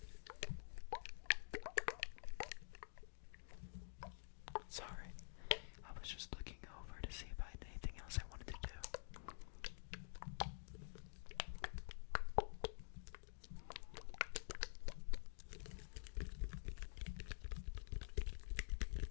Sorry, I was just looking over to see if I had anything else I wanted to do.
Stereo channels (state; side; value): silent; right; digital silence